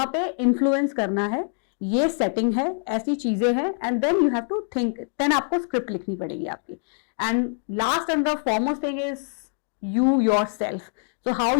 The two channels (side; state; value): right; silent; 61 dB below the other